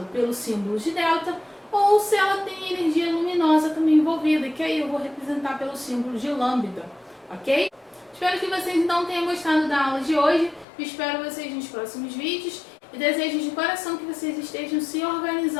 pelo símbolo de delta, ou se ela tem energia luminosa também envolvida, que aí eu vou representar pelo símbolo de lambda, ok? Espero que vocês então tenham gostado da aula de hoje, espero vocês nos próximos vídeos e desejo de coração que vocês estejam se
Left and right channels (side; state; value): right; drops out; at 10.7 s